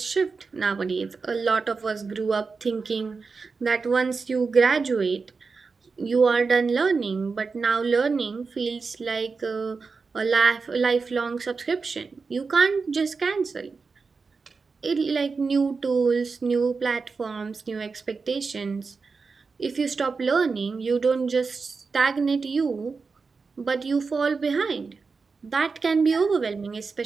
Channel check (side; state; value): left; quieter; 4.7 dB